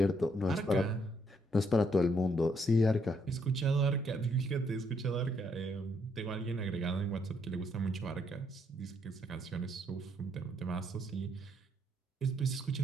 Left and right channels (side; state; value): both; normal; correlation 0.72